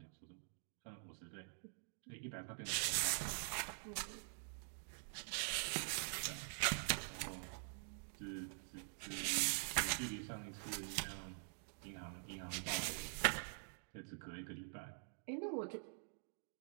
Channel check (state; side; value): silent; left; digital silence